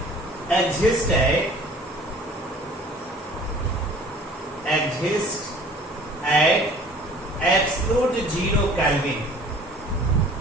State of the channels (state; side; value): normal; both; correlation 0.49